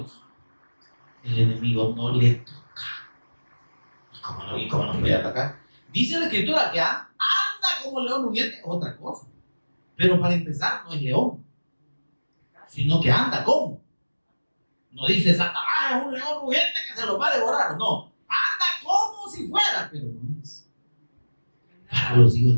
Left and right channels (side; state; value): both; inverted; correlation -1.00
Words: el enemigo no le toca. ¿Y cómo no puede atacar? Dice la Escritura que anda como león rugiente, otra cosa. Pero para empezar, no es león, sino que anda como. No dice Satanás es un león rugiente que se lo va a devorar. No, anda como si fuera, pero no es. Para los hijos